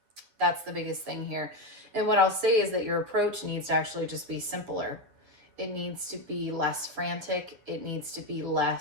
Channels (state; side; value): late; left; 9.0 ms